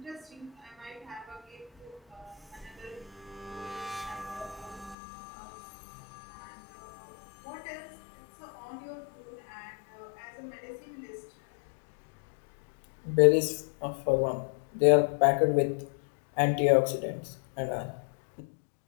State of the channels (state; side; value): drops out; right; at 5.0 s